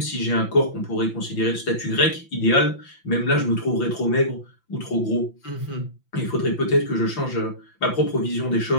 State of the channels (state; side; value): late; right; 5.9 ms